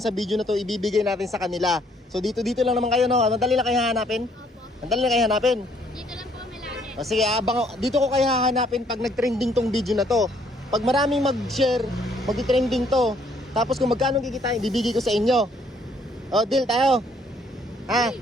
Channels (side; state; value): both; normal; correlation 0.65